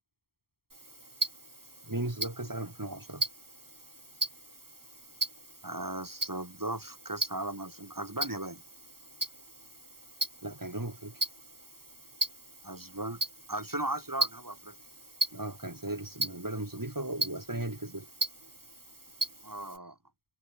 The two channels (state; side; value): late; left; 0.94 ms